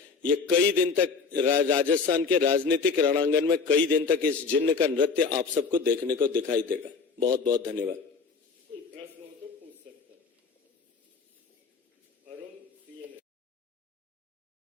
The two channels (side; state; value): right; quieter; 5.0 dB